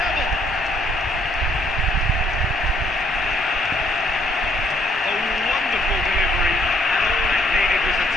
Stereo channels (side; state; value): both; normal; correlation 0.66